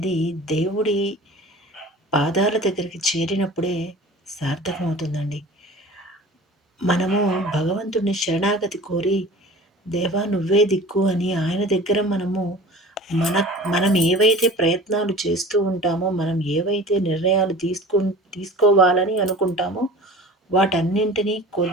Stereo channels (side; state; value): both; normal; correlation 0.41